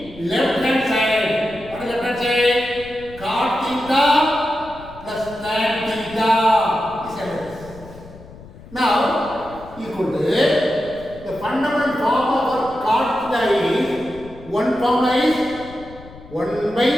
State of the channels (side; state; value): left; noise; rumble, 18 dB below the sound